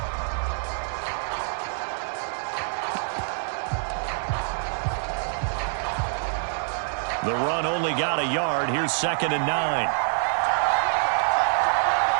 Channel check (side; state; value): left; silent; digital silence